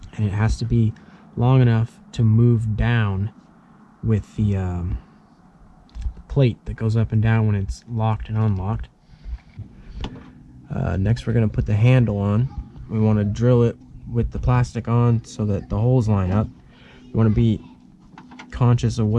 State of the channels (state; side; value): identical; both; correlation 1.00